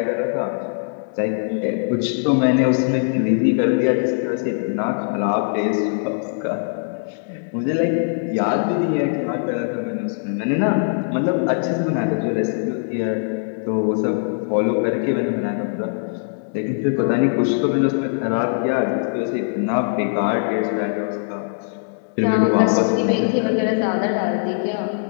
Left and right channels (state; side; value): silent; right; 65 dB below the other